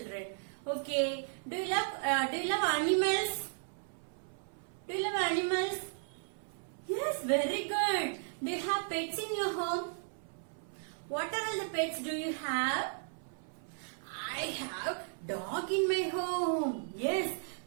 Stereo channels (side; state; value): left; silent; 54 dB below the other